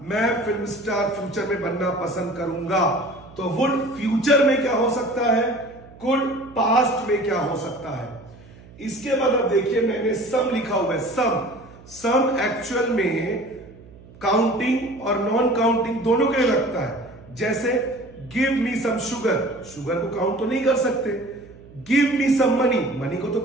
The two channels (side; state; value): right; noise; hum, 21 dB below the sound